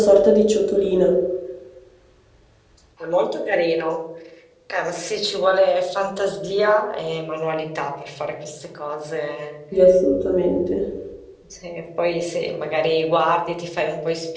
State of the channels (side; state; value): both; identical; correlation 1.00